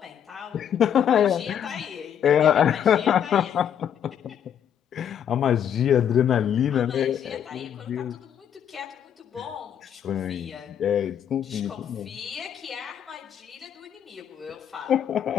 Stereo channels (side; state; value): right; quieter; 9.0 dB